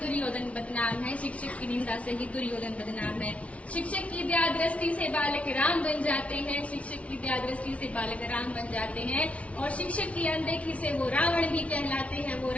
बदनाम है, शिक्षक की निंदा से ही दुर्योधन बदनाम है। शिक्षक की दया दृष्टि से बालक राम बन जाते हैं, शिक्षक की दया दृष्टि से बालक राम बन जाते हैं, और शिक्षक की अनदेखी से वो रावण भी कहलाते हैं, वो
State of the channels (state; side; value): late; right; 0.064 ms